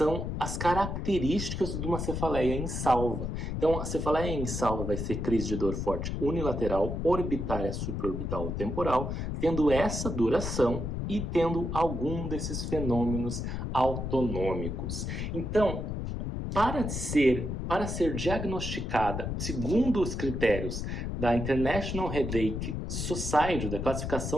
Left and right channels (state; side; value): noise; left; rumble, 3 dB below the sound